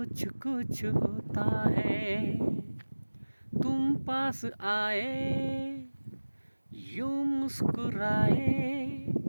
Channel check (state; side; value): inverted; both; correlation -1.00